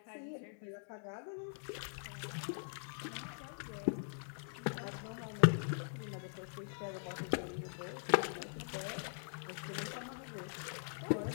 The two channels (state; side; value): silent; right; digital silence